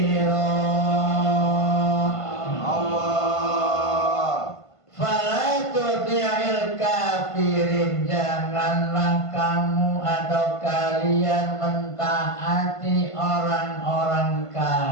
Fala tuti'il kafirin, janganlah kamu atau kalian mentaati orang-orang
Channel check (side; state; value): right; late; 1.5 ms